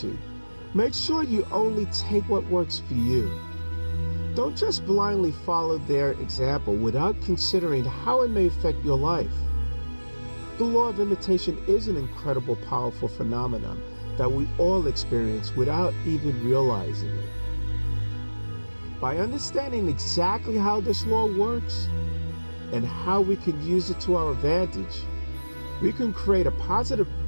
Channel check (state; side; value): inverted; both; correlation -1.00